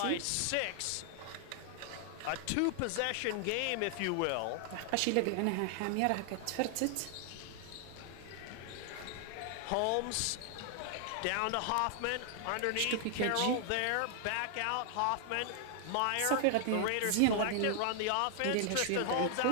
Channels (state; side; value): different; both; correlation 0.00